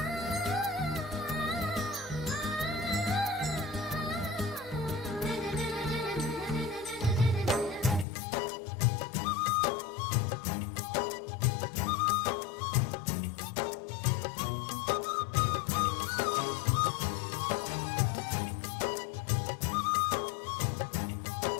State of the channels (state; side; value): drops out; right; at 8.1 s